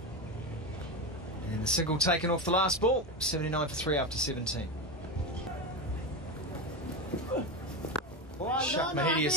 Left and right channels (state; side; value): normal; both; correlation 0.18